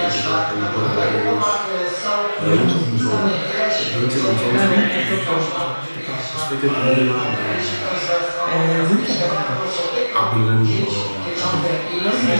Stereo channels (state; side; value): inverted; both; correlation -1.00